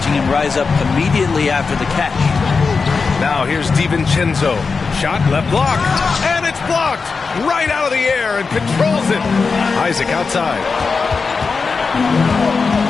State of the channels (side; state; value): right; quieter; 4.7 dB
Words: him rise up immediately after the catch. Now here's DiVincenzo. Shot left block. And it's blocked right out of the air and controls it. Isaac outside.